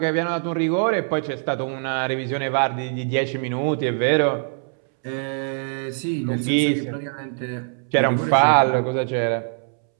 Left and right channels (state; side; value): silent; left; 64 dB below the other